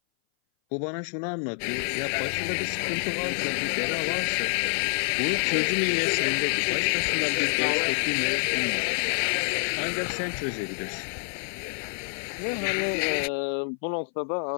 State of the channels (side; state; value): right; silent; 58 dB below the other